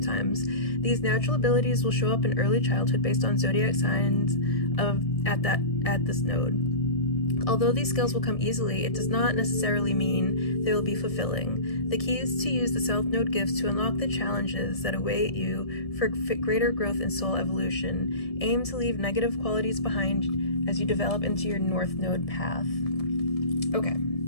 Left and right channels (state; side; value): late; right; 1.7 ms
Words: These natural abilities will show up in early childhood based on zodiac signs at this node. Although these skills will come easily, it does not necessarily mean they will be fulfilling. The key is to use the South Node gifts to unlock the challenges that await you for greater growth and soul evolution. Aim to leave negative qualities behind as you develop into your North Node path. Okay,